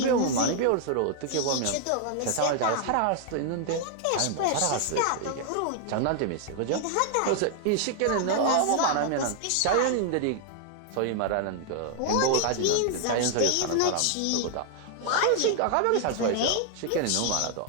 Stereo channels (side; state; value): both; different; correlation 0.00